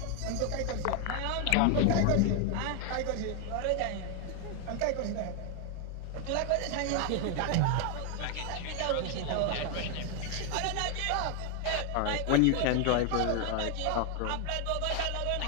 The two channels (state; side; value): different; both; correlation 0.01